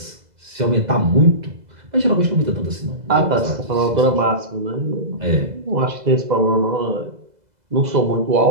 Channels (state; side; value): late; left; 2.0 ms